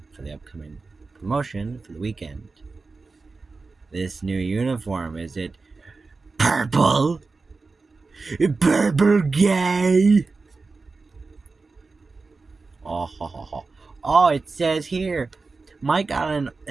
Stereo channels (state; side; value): quieter; left; 4.0 dB